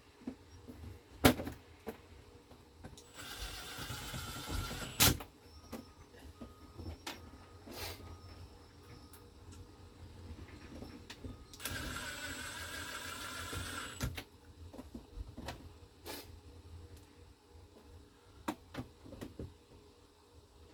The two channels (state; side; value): identical; both; correlation 1.00